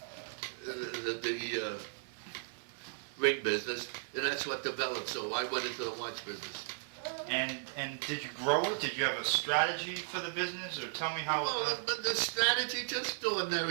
ring business, and that's what developed. So I went into the watch business. And did you grow it? Did you have a strategy for the business, or tell me how? Well, the strategy, just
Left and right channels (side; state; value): left; silent; digital silence